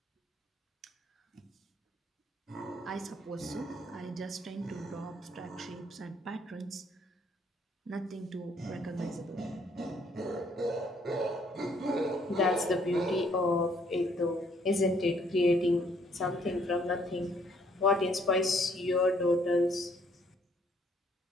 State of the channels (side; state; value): both; normal; correlation 0.66